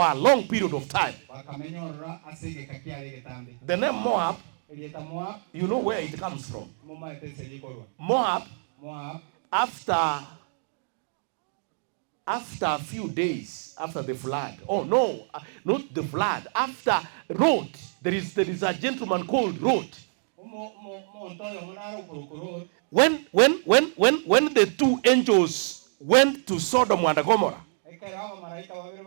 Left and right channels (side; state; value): left; silent; digital silence